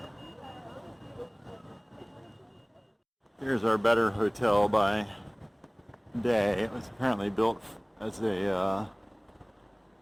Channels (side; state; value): both; identical; correlation 1.00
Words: Here's our better hotel by day. It was apparently built as a